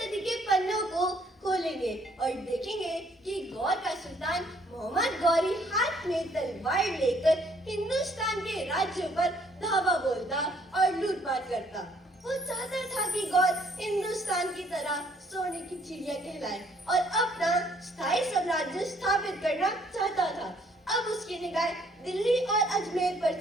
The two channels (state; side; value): normal; both; correlation 0.64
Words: के पन्नों को खोलेंगे और देखेंगे कि गौर का सुल्तान मोहम्मद गौरी हाथ में तलवार लेकर हिंदुस्तान के राज्यों पर धावा बोलता और लूटपाट करता। वो चाहता था कि गौर हिंदुस्तान की तरह सोने की चिड़िया कहलाए और अपना स्थायी साम्राज्य स्थापित करना चाहता था। अब उसकी निगाह दिल्ली और अजमेर पर